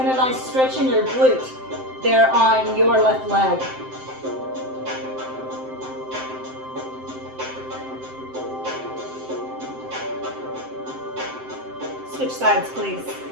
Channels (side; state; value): left; late; 7.7 ms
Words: a nice stretch in your glute there on your left leg. Switch sides, please.